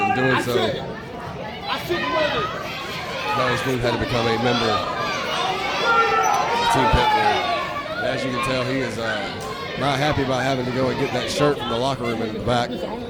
in doing so, Johnny Smooth had to become a member of Team Pitbull. And as you can tell, he is not happy about having to go and get that shirt from the locker room in the back. This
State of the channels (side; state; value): both; identical; correlation 1.00